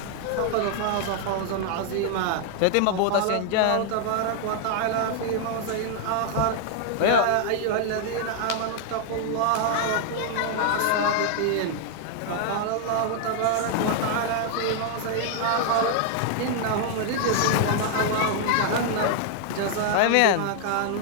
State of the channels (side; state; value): both; different; correlation 0.00